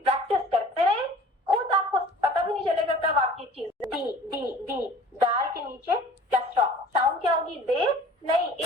کرتے رہیں, خود آپ کو پتہ بھی نہیں چلے گا کب آپ کی چیز. ڈی دال کے نیچے کیا ساؤنڈ کیا ہوگی؟ دے نہیں,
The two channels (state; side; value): normal; both; correlation 0.47